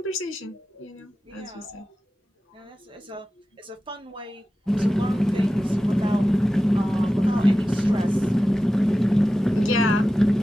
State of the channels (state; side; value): normal; both; correlation 0.94